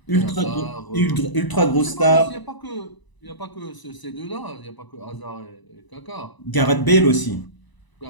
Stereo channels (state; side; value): late; right; 1.0 ms